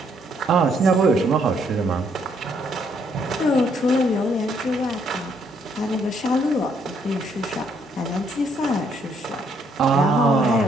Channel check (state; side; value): normal; both; correlation 0.70